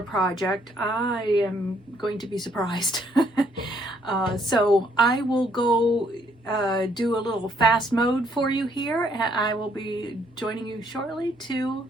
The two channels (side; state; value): both; normal; correlation 0.68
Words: project, I am going to be surprised. So I will go do a little fast mode for you here, and I will be joining you shortly to